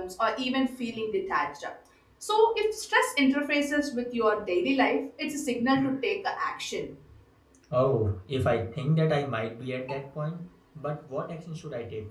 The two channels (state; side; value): identical; both; correlation 1.00